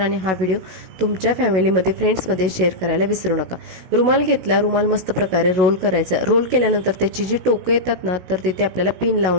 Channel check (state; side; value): late; left; 16 ms